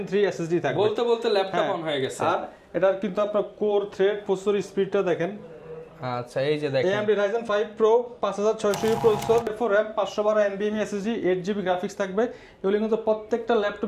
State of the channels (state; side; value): identical; both; correlation 1.00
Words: 3 SSD থাকবে। বলতে বলতে ল্যাপটপ অন হয়ে গেছে। আর এটার কিন্তু আপনার কোর থ্রেড প্রসেসর স্পিডটা দেখেন। আচ্ছা এই যে দেখেন AMD Ryzen 5 Pro 5600 processor 4 RAM 512 NVMe SSD 8GB graphics থাকবে। এগুলো কিন্তু প্রত্যেকটা